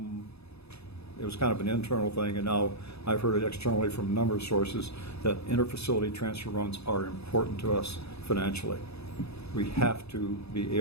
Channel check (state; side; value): late; right; 0.79 ms